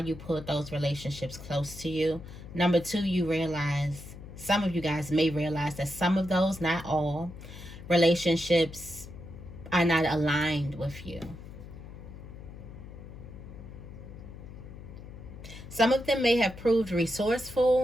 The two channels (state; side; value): noise; left; hum, 14 dB below the sound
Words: pulled those relationships close to you. Number two, you realize, some of you guys may realize that some of those, not all, relationships are not aligned with you. Some of them may have proved